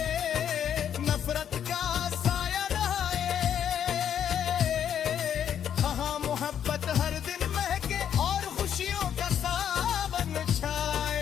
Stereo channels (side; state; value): right; quieter; 9.1 dB